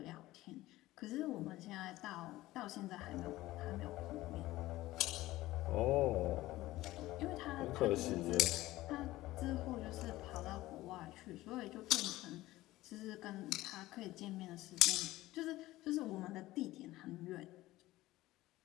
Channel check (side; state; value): right; quieter; 17.2 dB